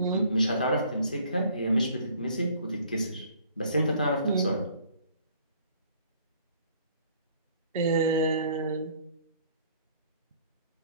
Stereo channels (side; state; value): both; inverted; correlation -0.58